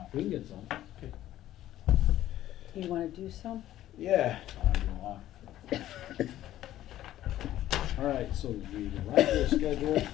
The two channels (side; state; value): right; quieter; 13.4 dB